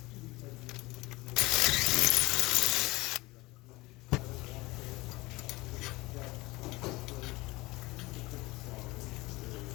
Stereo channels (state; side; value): quieter; right; 21.6 dB